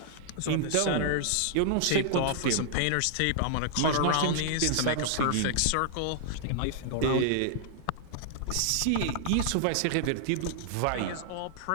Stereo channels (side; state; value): both; different; correlation -0.01